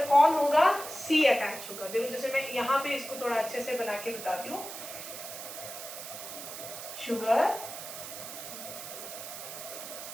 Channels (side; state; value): right; noise; hiss, 10 dB below the sound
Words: कौन होगा, C अटैच होगा। देखो जैसे मैं यहाँ पे इसको थोड़ा अच्छे से बना के बताती हूँ, शुगर,